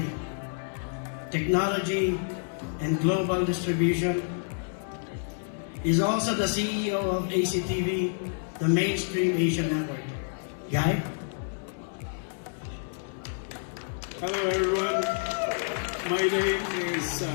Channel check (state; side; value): silent; right; digital silence